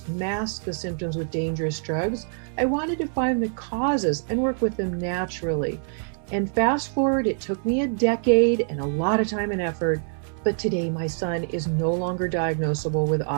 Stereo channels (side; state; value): left; silent; 62 dB below the other